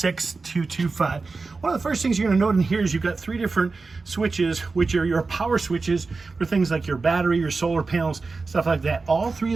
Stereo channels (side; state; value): left; quieter; 4.1 dB